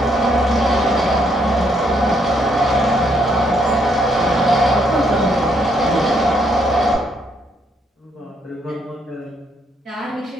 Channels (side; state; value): both; normal; correlation 0.72